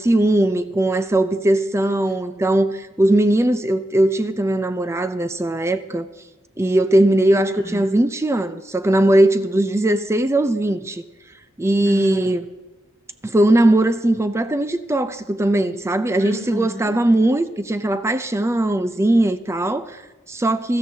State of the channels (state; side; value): normal; both; correlation 0.88